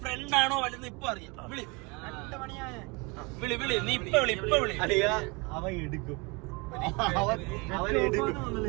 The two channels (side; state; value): left; quieter; 28.2 dB